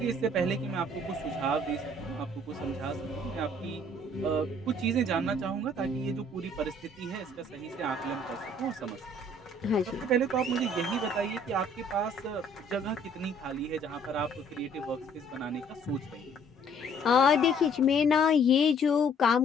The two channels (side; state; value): both; normal; correlation 0.60